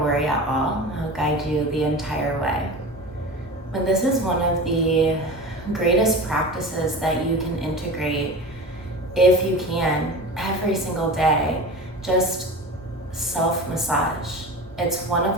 at all. I'll guide you the entire way. But this is one of the greatest practices that you can integrate, if you can, every single day. Just self-massage. It's one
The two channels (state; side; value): normal; both; correlation 0.31